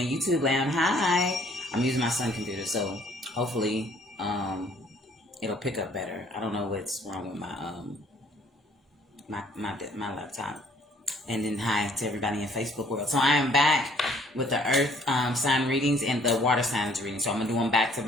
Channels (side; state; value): both; normal; correlation 0.60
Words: YouTube land, hi. I'm using my son computer, so hopefully it'll pick up better. I don't know what's wrong with my laptop. And then hi to everybody in Facebook world. So I am back with the Earth sign readings and the water signs readings. So I'm gonna do them back to